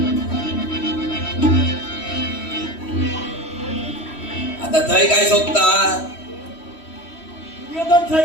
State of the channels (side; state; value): right; late; 3.1 ms